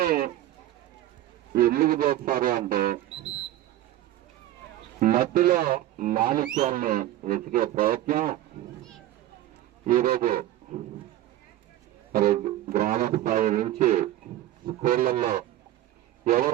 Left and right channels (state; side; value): quieter; left; 13.9 dB